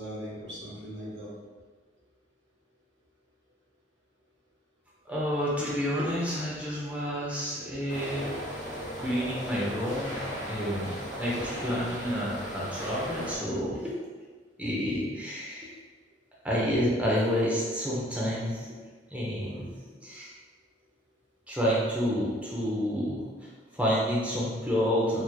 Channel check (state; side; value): normal; both; correlation 0.56